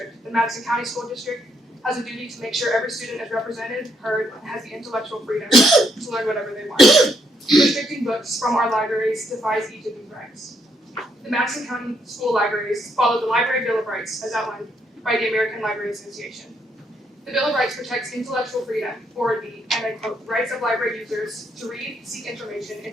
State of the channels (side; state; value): both; normal; correlation 0.74